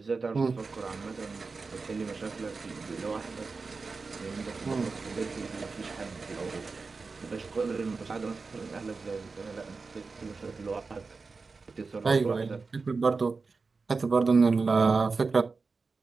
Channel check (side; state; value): left; quieter; 4.3 dB